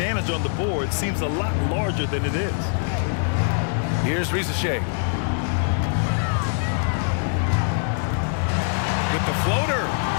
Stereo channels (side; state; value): right; silent; 63 dB below the other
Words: on the board seems a lot larger than it is. Here's Risache. With the floater.